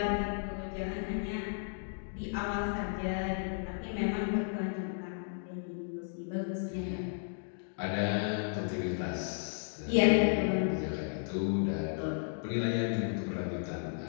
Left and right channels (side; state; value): right; silent; digital silence